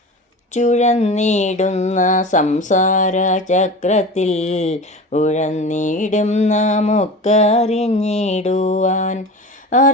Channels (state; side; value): normal; both; correlation 0.32